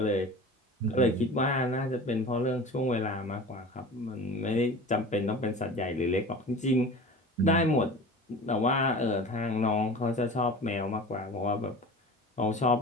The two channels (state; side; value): normal; both; correlation 0.37